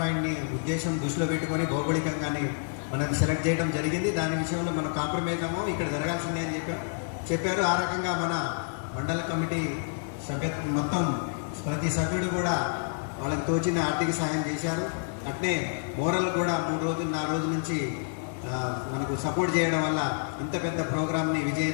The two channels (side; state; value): right; silent; digital silence